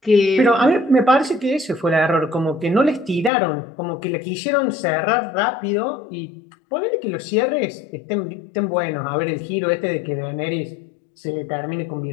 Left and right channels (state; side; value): drops out; right; at 3.3 s